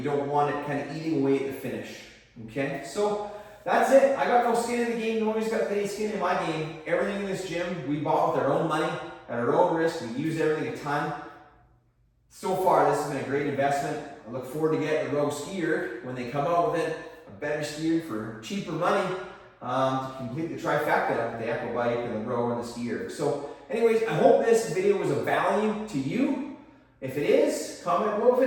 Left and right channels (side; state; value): both; identical; correlation 1.00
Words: don't want it kind of eating away at the finish. Okay, so that's it. I got no skin in the game. Nobody's got any skin in my game. Everything in this gym we bought with our own money, at our own risk. We use everything a ton. So far, this has been a great investment. I look forward to getting the Rogue skier when they come out with it, a better skier for cheaper money to complete the trifecta of the Echo bike and the rower and the skier. So anyways, I hope this video was of value to you. If it is, comment below.